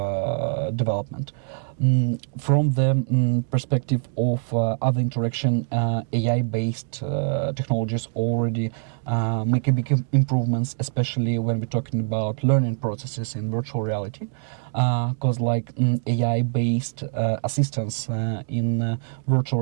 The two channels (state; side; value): silent; left; digital silence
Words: development. From the perspective of other interaction, AI-based technologies already make a big improvements, especially when we're talking about learning processes in virtual reality, because like AI-based assistance in virtual